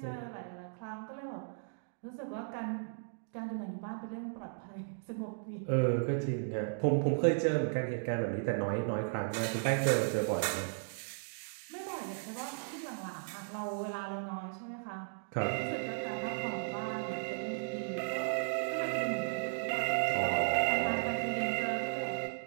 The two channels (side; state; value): left; silent; digital silence